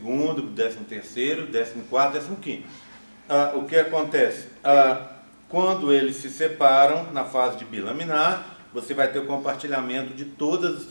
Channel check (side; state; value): both; inverted; correlation -1.00